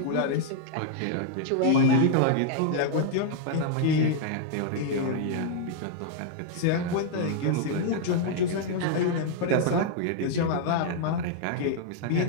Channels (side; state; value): both; different; correlation -0.01